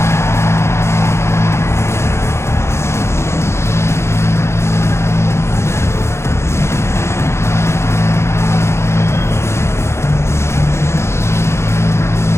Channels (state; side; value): late; right; 0.13 ms